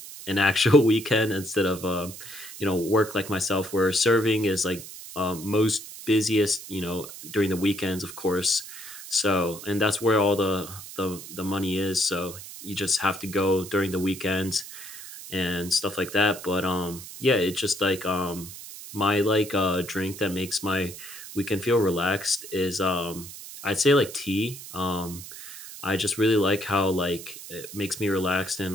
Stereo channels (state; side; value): noise; right; hiss, 13 dB below the sound